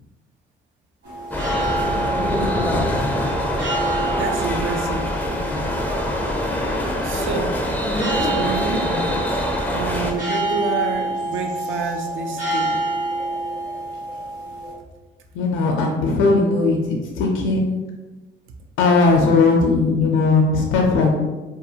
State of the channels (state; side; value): normal; both; correlation 0.47